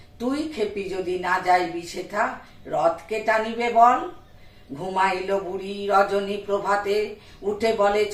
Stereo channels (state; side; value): identical; both; correlation 1.00